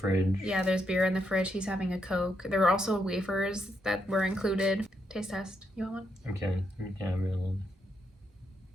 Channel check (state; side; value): normal; both; correlation 0.80